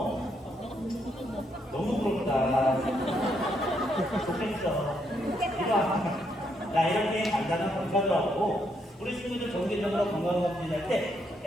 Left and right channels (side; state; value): both; normal; correlation 0.76